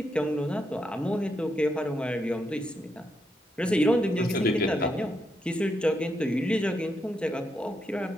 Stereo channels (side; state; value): both; normal; correlation 0.81